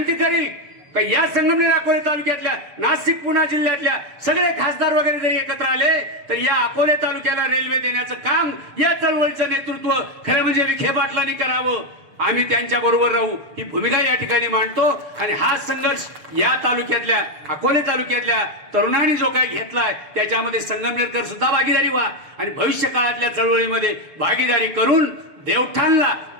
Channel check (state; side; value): late; left; 6.9 ms